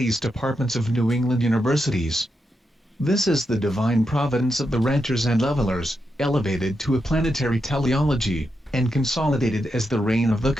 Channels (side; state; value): both; normal; correlation 0.85